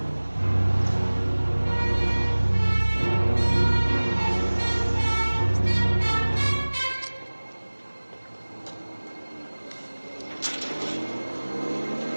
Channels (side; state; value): both; inverted; correlation -1.00